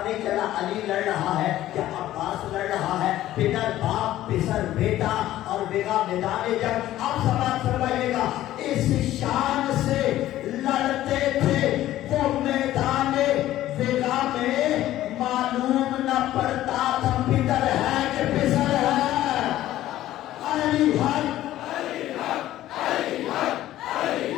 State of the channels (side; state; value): right; quieter; 14.1 dB